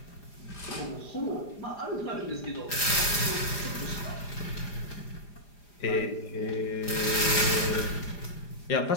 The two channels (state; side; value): late; right; 4.9 ms